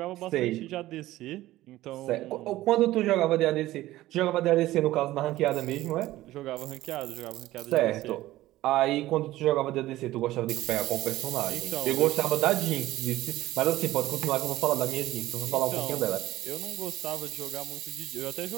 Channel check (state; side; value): quieter; left; 16.1 dB